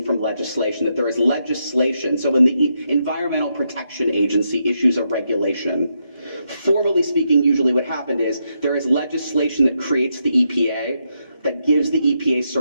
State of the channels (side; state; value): both; inverted; correlation -0.81